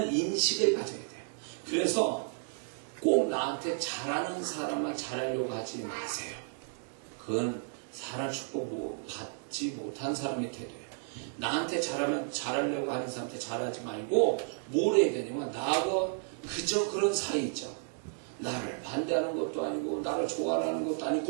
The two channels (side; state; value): left; silent; 56 dB below the other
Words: 인식을 가져야 돼요. 그래서 꼭 나한테 잘하는 사람만 잘하려고 하지 마세요. 그건 사람 축복 받지 못한 사람의 태도예요. 나한테 잘하려고 하는 사람한테 잘하지 말고 뭘 해야 되냐면 나하고 그저 그런 사이 있죠. 나를 반대하는 것도 아니고 나를 좋아하는 것도